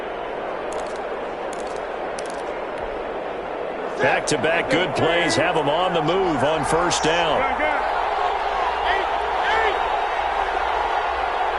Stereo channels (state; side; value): identical; both; correlation 1.00